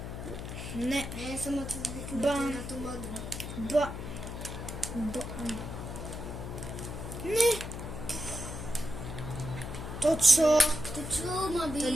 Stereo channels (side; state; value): left; noise; hum, 7 dB below the sound